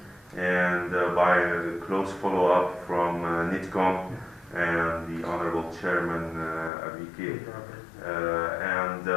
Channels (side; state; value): right; drops out; at 6.7 s